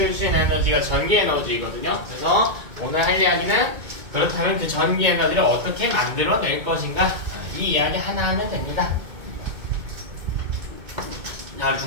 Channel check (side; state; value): left; late; 2.2 ms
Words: 수 있는 에너지가 전기 에너지거든요. 그래서 오늘 할 이야기는 그렇다면 그 전기 에너지를 어떻게 만들어낼 것인가 이 이야기 하나 하면 됩니다. 자,